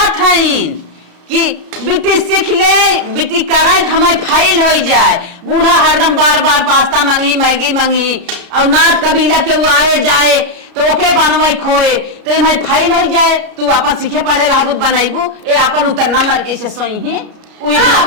है कि बिटी सीख ले बिटी करे तो हमारे फाइल हो जाए। बूढ़ा हरदम बार बार पास्ता मांगी मैगी मांगी और नाथ कबीला के वो आए जाए तो ओके बनवाई खोए तो इन्हें फाइल हो जाए। तू अपन सीखे पढ़े रहबू बनाईबू ए अपन उतरना मर के से सोई ही उही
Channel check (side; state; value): left; late; 33 ms